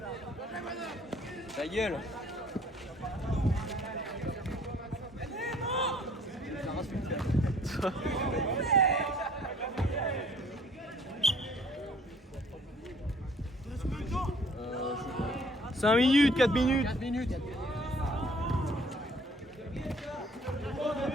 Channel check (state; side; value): normal; both; correlation 0.56